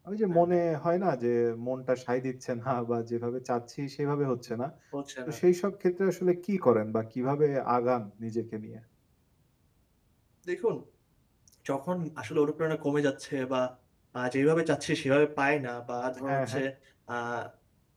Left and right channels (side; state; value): both; identical; correlation 1.00